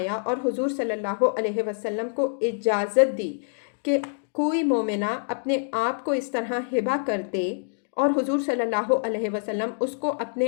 اور حضور صلی اللہ علیہ وسلم کو اجازت دی کہ کوئی مومنہ اپنے آپ کو اس طرح ہبہ کر دے اور حضور صلی اللہ علیہ وسلم اس کو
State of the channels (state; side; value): silent; right; digital silence